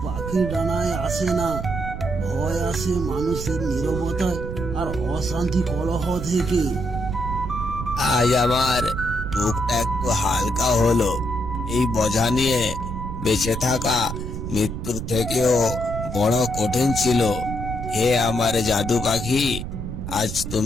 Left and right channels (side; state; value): right; noise; rumble, 6 dB below the sound